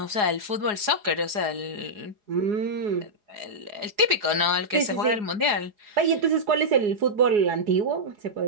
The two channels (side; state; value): left; late; 4.8 ms